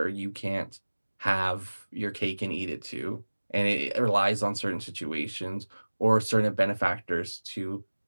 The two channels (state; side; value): inverted; both; correlation -1.00